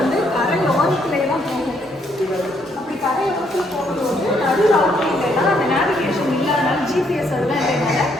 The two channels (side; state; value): both; normal; correlation 0.72